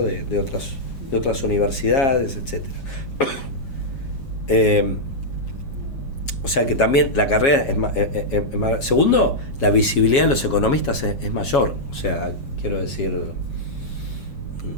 otras universidades, etcétera. O sea que también la carrera es más. Segundo, la visibilidad de los economistas es mayor. O sea, quiero decir,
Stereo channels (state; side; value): late; right; 7.3 ms